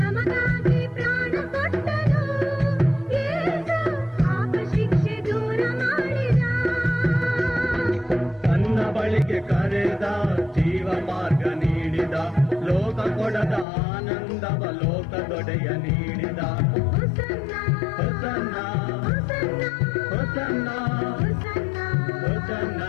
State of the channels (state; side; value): drops out; right; at 13.7 s